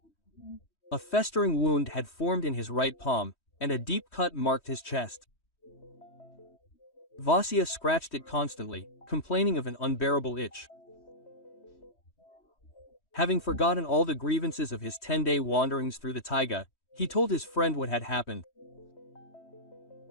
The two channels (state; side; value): late; right; 3.1 ms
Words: A festering wound had formed in his right palm, and a deep cut marked his chest. Vasya scratched it constantly, complaining of an unbearable itch. Having forgotten all the grievances of his 10-day wanderings through the taiga, he told his friend what had happened.